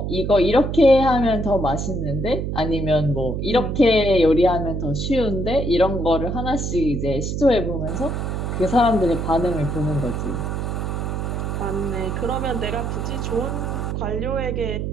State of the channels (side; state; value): right; noise; hum, 2 dB below the sound